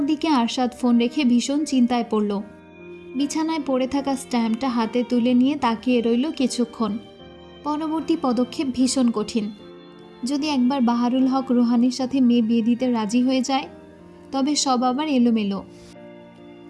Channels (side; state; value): both; identical; correlation 1.00